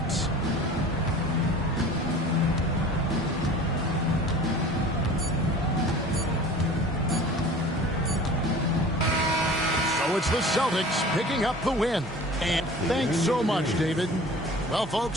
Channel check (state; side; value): normal; both; correlation 0.42